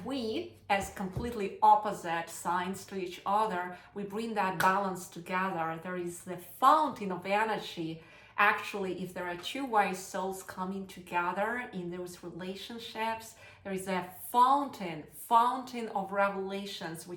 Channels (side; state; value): both; identical; correlation 1.00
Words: we, as completely opposite signs to each other, we bring that balance together. There is the fountain of energy. Actually, if there are two wise souls coming together in those relationships, there is a fountain of revelations